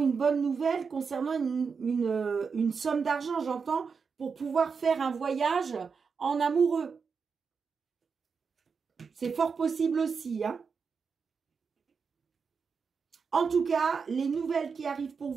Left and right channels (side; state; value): left; quieter; 5.5 dB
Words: bonne nouvelle concernant une somme d'argent, j'entends, pour pouvoir faire un voyage en amoureux. C'est fort possible aussi. Hein. En tout cas, les nouvelles qui arrivent pour